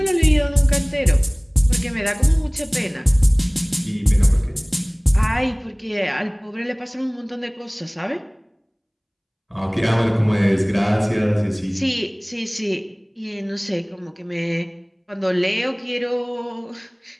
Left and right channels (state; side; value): identical; both; correlation 1.00